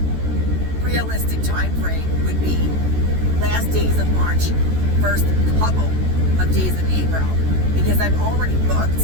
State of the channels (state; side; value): late; left; 14 ms